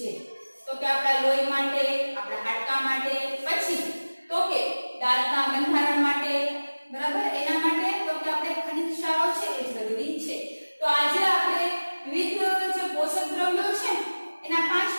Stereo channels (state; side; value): inverted; both; correlation -1.00